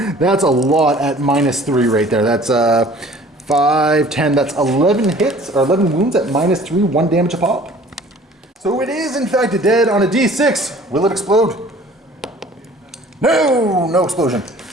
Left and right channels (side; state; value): both; normal; correlation 0.50